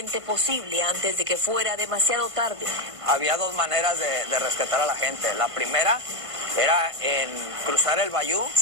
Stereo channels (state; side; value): late; left; 1.5 ms